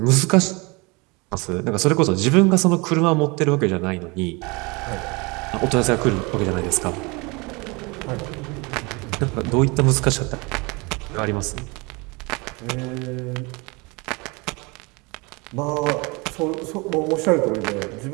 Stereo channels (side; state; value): left; quieter; 27.1 dB